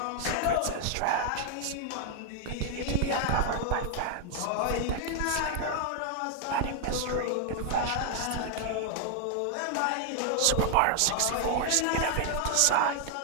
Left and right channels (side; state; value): both; different; correlation 0.00